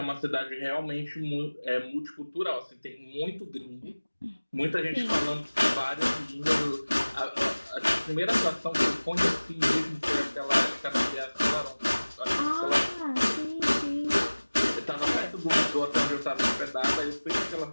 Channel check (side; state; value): both; inverted; correlation -1.00